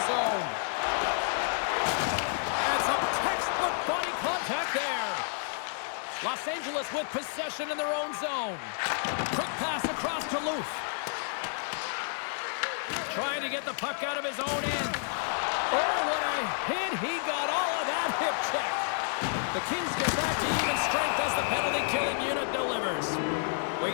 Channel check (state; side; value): silent; right; 58 dB below the other